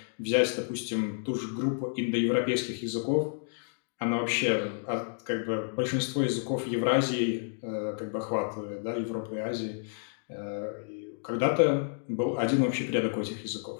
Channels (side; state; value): right; silent; digital silence